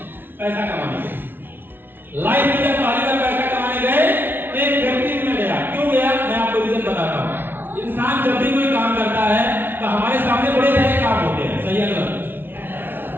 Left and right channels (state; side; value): late; left; 0.10 ms